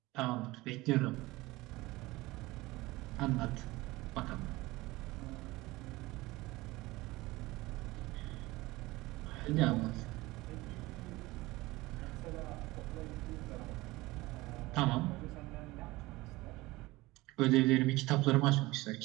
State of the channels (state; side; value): quieter; left; 20.1 dB